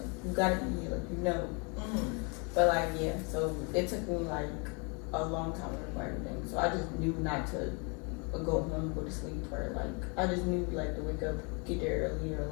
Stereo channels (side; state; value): right; quieter; 33.6 dB